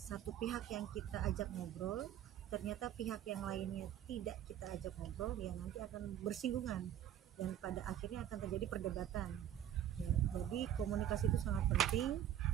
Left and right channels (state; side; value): quieter; left; 11.0 dB